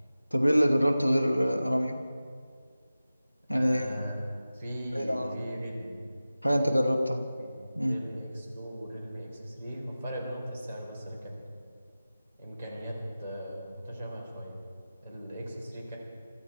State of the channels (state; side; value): inverted; both; correlation -0.96